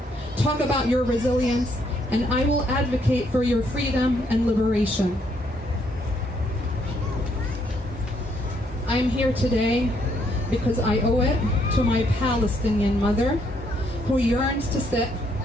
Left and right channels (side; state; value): both; normal; correlation 0.71